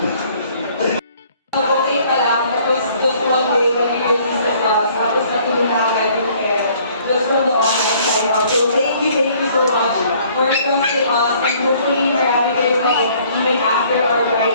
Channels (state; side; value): inverted; both; correlation -0.59